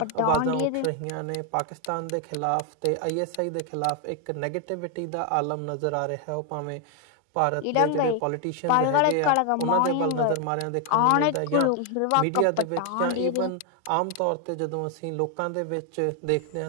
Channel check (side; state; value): both; different; correlation 0.01